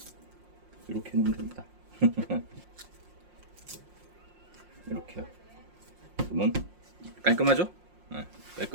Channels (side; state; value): left; late; 5.6 ms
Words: 이렇게 놓으면 됩니다. 이렇게요. 그러면 깔끔하죠? 네,